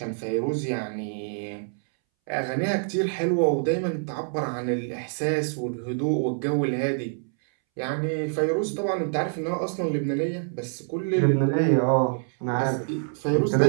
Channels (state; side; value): silent; left; 61 dB below the other